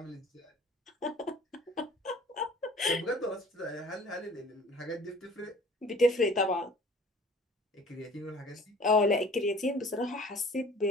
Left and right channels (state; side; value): normal; both; correlation 0.50